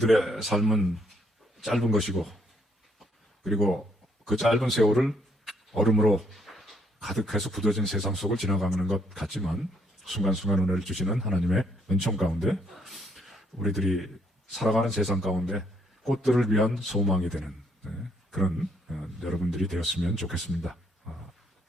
삶은 짧은 것이고, 그리고 그 짧은 세월을 얼음으로 가득해서 굳어진 세상 속을 지나가는 것 같지만, 순간순간 은혜를 주시는 하나님의 은총 가운데 우리들이 살아가는 세상 가운데 꽃들을 위한 소망이 되는 그런 여러분들이 되었으면 좋겠습니다.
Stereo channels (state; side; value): normal; both; correlation 0.70